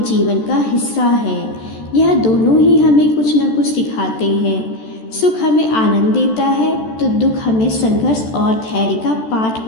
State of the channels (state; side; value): late; right; 14 ms